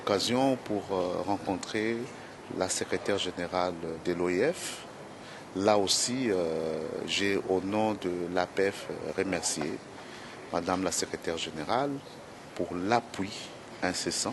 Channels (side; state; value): both; identical; correlation 1.00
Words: pour rencontrer la secrétaire générale de l'OIF. Là aussi, j'ai au nom de l'APF remercié Madame la secrétaire générale pour l'appui